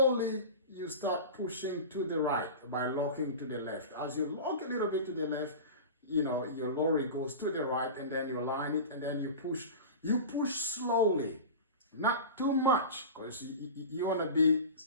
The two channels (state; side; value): inverted; both; correlation -0.31